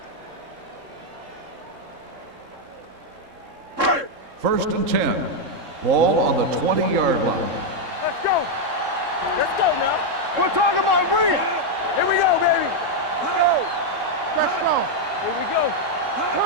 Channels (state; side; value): late; left; 3.7 ms